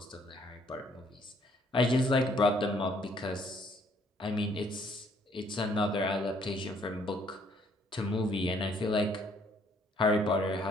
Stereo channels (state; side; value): normal; both; correlation 0.64